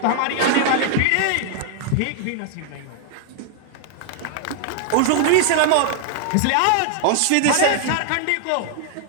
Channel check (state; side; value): different; both; correlation 0.00